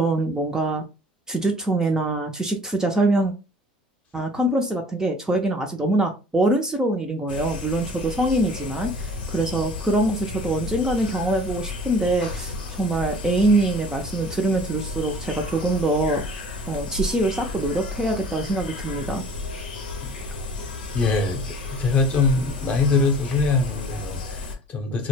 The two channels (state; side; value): normal; both; correlation 0.48